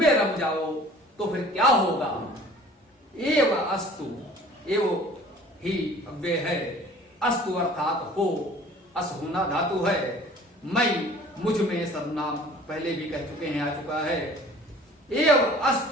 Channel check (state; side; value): normal; both; correlation 0.49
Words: रम जाओ। तो फिर क्या होगा? एव अस्तु, एव ही अव्यय है, अस्तु अर्थात हो, अस होना धातु है, मई मुझ में सर्वनाम पहले भी कह चुके हैं, आ चुका है। एव